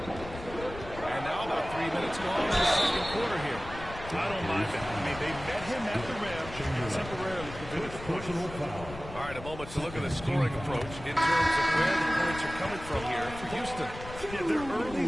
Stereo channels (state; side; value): noise; left; rumble, 13 dB below the sound